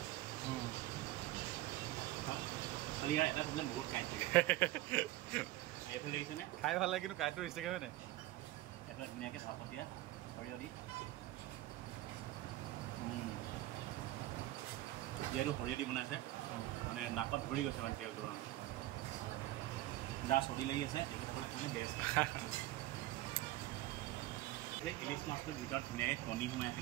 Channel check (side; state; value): left; quieter; 16.6 dB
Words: খালি ইয়াৰ এটা প্ৰব্লেম বহুত কাঁইট থাকে এইফালে দেখিছেনে খাই ভাল লাগে কিন্তু কাঁইটটো ৰিষ্টেকে হয় নাই এইফালে ধুনীয়াকৈ ভাপত দিয়া সৰিয়হ দি যিহেতু সৰিয়হ দি বনাইছে মানে নাকত ধৰি গৈছে মানে তেলটো যাৰ চৰ্দি লাগি আছে তেখেতসকলে কাৰণে বেষ্ট ইলিচ মাছটোৰ ভিতৰত ধুনীয়াকৈ কণী সোমাই আছে